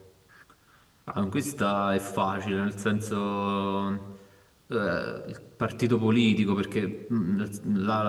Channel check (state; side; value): identical; both; correlation 1.00